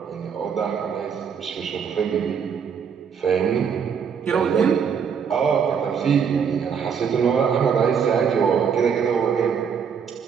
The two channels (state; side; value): quieter; left; 7.0 dB